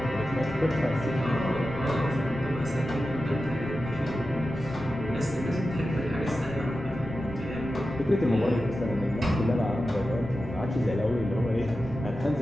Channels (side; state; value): left; noise; rumble, 16 dB below the sound